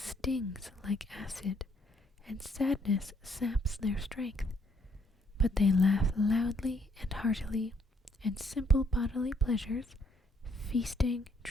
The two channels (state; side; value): normal; both; correlation 0.69